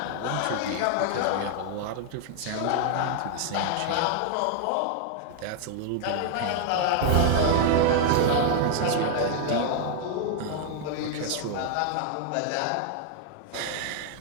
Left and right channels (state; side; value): different; both; correlation 0.00